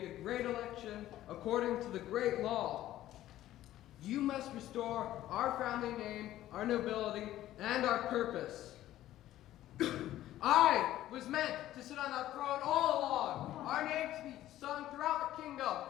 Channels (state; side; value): quieter; right; 13.8 dB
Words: a great election according to the great law. You must restore our family name, our nobility, and our purpose. I was meant to sit on that throne all along. Our name to be sung throughout the kingdom.